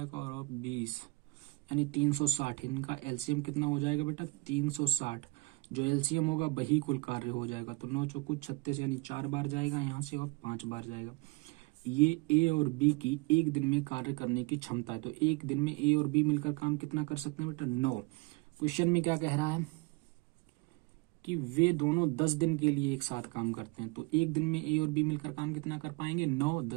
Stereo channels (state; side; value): quieter; left; 23.5 dB